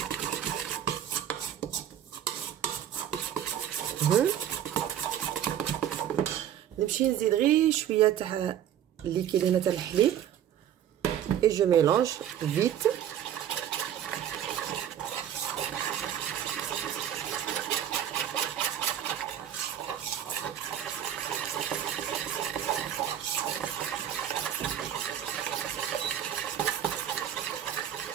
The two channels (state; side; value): quieter; left; 10.3 dB